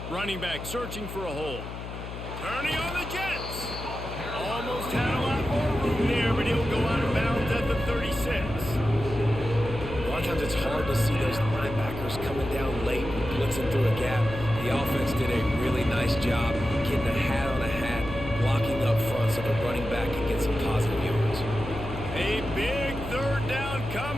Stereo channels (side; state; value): left; noise; hum, 9 dB below the sound